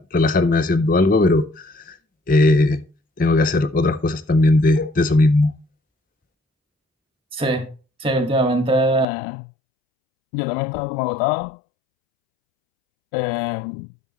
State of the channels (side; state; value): right; drops out; at 9.1 s